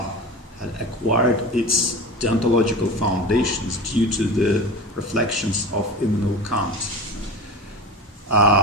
acquired its deontological foundations due to the reflections of Immanuel Kant.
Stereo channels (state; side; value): normal; both; correlation 0.31